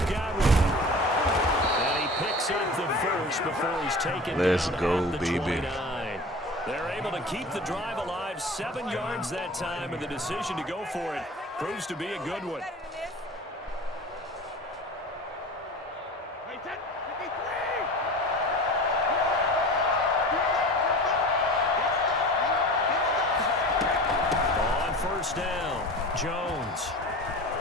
Godwin. And he picks up the first before he's taken Let's down go, at the baby. 29. They're able to keep the drive alive, 7 yards that time, and the decision to go for it proves to be a good one. On first down, Jones.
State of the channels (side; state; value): both; normal; correlation 0.36